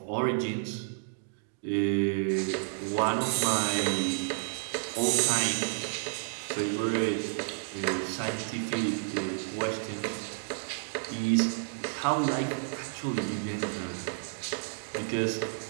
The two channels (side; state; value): left; silent; digital silence